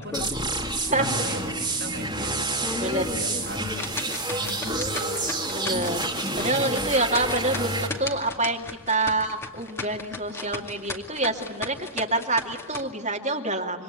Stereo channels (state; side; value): normal; both; correlation -0.04